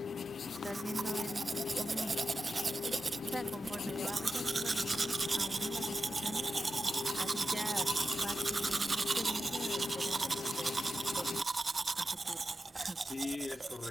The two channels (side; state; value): both; normal; correlation 0.91